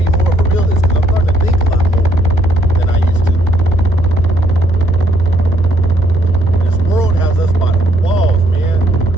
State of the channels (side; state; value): both; normal; correlation 0.70